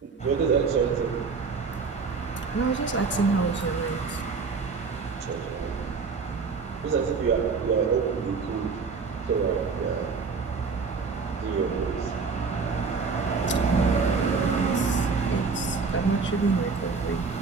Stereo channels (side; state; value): left; quieter; 4.9 dB